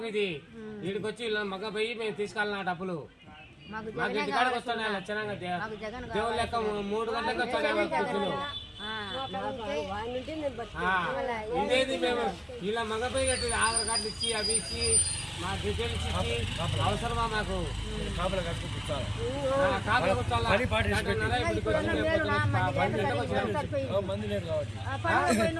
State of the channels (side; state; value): both; identical; correlation 1.00